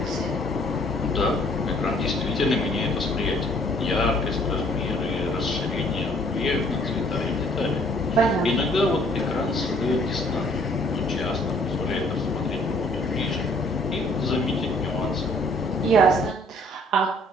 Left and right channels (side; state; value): both; normal; correlation 0.60